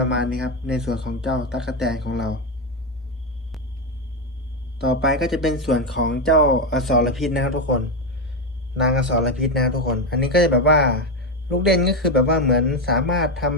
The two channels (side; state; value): both; normal; correlation 0.09